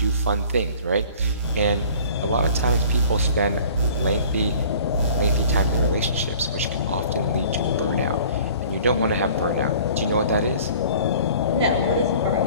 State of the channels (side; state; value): both; inverted; correlation -0.48